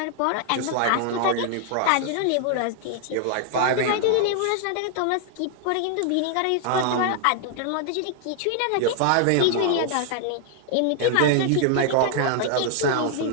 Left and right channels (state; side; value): different; both; correlation 0.00